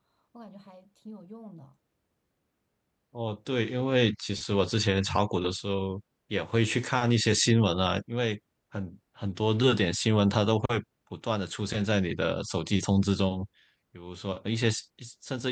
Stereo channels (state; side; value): identical; both; correlation 1.00